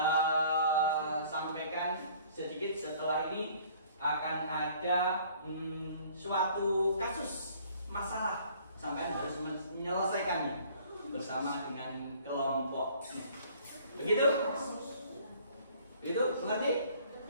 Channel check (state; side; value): inverted; both; correlation -0.55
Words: sampaikan sedikit setelah ini akan ada suatu kasus masalah sampai harus menyelesaikannya bersama dengan kelompoknya. Begitu? Begitu? Mengerti?